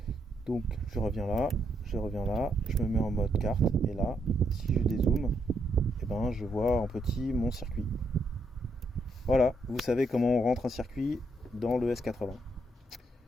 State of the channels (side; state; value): both; normal; correlation 0.76